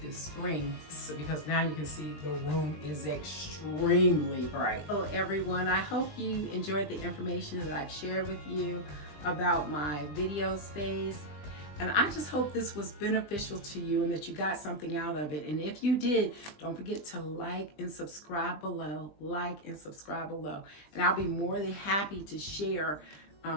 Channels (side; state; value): right; late; 20 ms